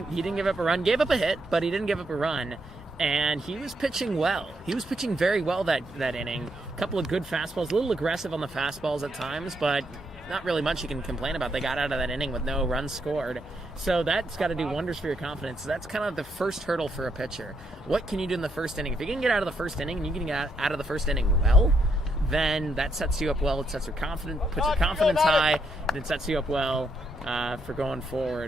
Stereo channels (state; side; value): normal; both; correlation 0.77